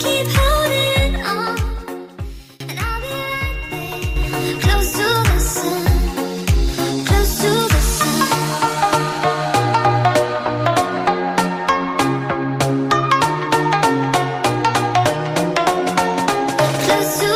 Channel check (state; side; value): identical; both; correlation 1.00